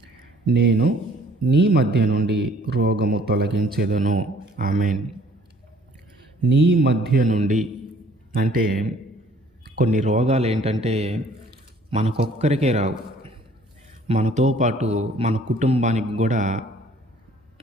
నేను నీ మధ్య నుండి రోగము తొలగించేదను. ఆమేన్. నీ మధ్య నుండి అంటే కొన్ని రోగాలు ఏంటంటే మనకొక్కరికే రావు, మనతో పాటు మన కుటుంబానికి కూడా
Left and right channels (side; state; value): both; normal; correlation 0.57